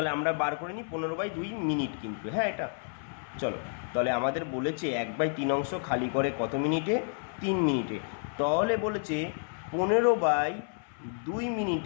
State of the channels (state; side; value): silent; right; 58 dB below the other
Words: আমরা বার করে নিই 15/2 মিনিট কিন্তু, হ্যাঁ এটা। চলো তাহলে আমাদের বলেছে 1/3 অংশ খালি করে কত মিনিটে? 3 মিনিটে। তাহলে বলেছে 15/2